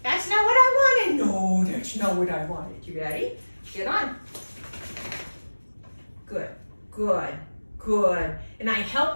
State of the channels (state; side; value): inverted; both; correlation -1.00